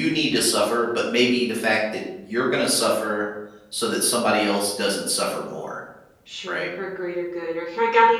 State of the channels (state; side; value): identical; both; correlation 1.00